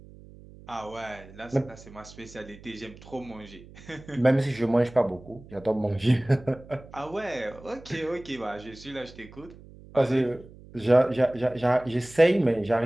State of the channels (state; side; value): noise; right; hum, 20 dB below the sound